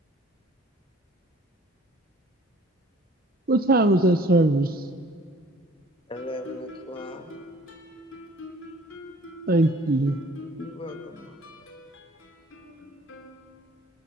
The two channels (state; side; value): normal; both; correlation 0.53